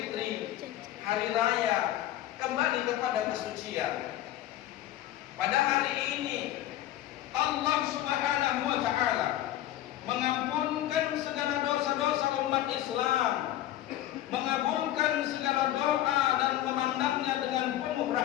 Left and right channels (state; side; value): quieter; right; 13.5 dB